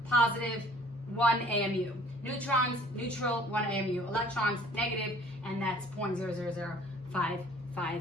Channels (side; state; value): both; normal; correlation 0.53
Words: positive, 1 AMU. Neutrons, neutral, 1 AMU. Electrons, negative, and that's